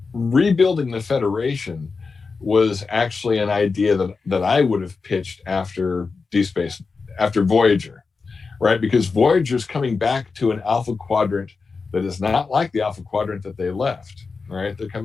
rebuilding the Federation was actually an idea that I would have pitched after after Voyager, right? Because Voyager's coming back to an Alpha Quadrant that is not like the Alpha Quadrant that they left, right? They're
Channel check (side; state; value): right; quieter; 4.6 dB